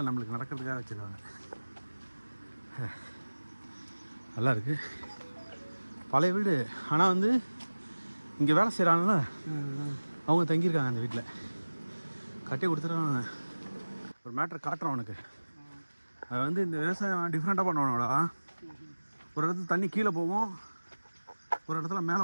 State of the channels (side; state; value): both; inverted; correlation -1.00